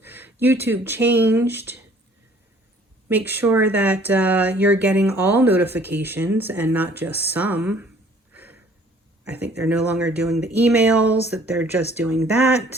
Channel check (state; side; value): normal; both; correlation 0.55